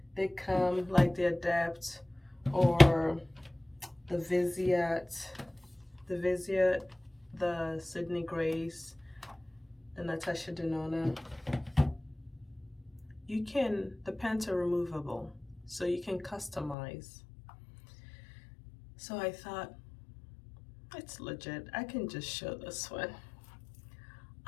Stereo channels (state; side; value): drops out; right; at 16.8 s